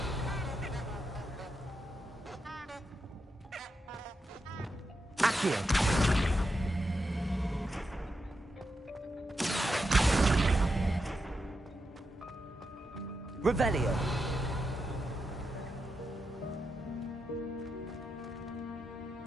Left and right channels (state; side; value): normal; both; correlation 0.86